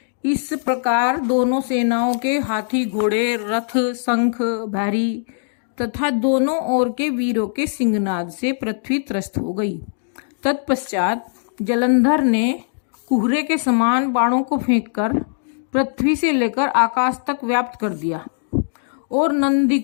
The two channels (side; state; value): right; silent; digital silence